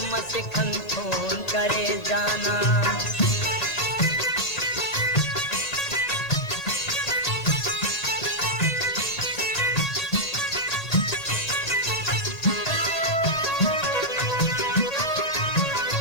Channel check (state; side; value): late; right; 2.0 ms